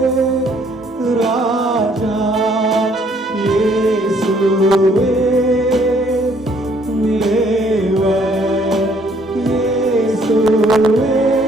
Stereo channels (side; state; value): both; normal; correlation 0.64